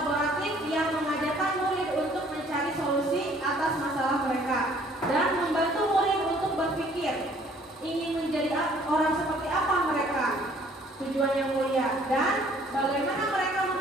yang mengajarkan murid untuk mencari solusi atas masalah orang seperti apa mereka, tujuan yang mulia, dan bagaimana mereka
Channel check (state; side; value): normal; both; correlation 0.58